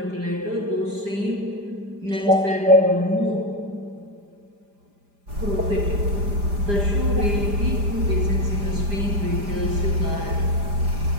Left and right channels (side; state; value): left; late; 5.0 ms